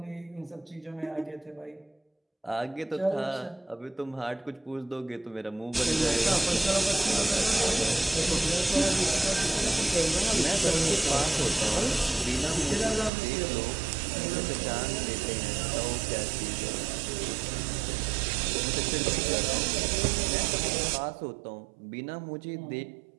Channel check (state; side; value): drops out; left; at 13.1 s